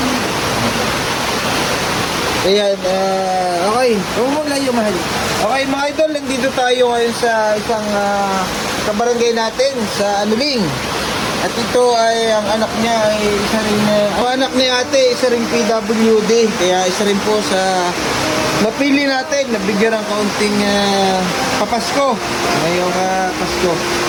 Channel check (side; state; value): both; identical; correlation 1.00